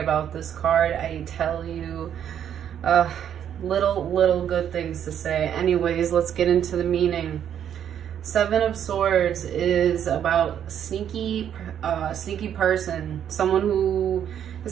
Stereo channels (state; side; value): quieter; left; 9.4 dB